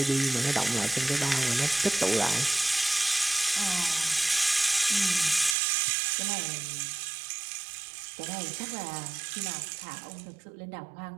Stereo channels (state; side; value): drops out; left; at 5.6 s